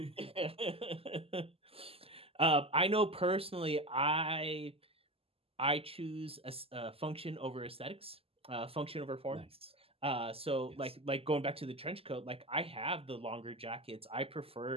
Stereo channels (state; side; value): late; left; 0.28 ms